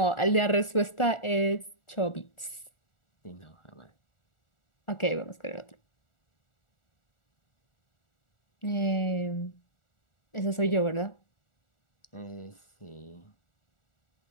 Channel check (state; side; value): late; right; 1.4 ms